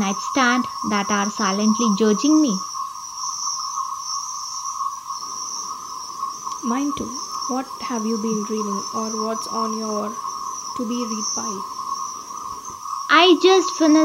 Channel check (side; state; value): both; identical; correlation 1.00